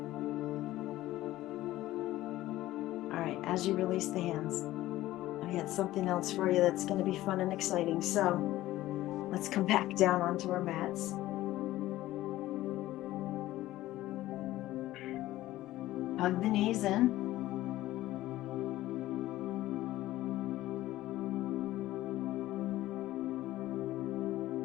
All right, as you release the hands, I got something else for you that's going to be fun and exciting. So let's come back down onto our mats. Hug the knees in.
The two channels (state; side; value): quieter; right; 15.7 dB